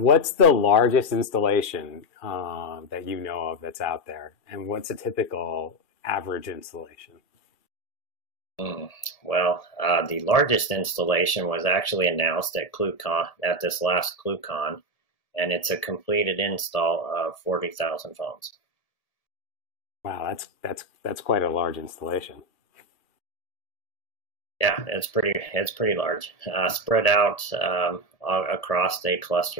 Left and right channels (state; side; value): late; right; 1.8 ms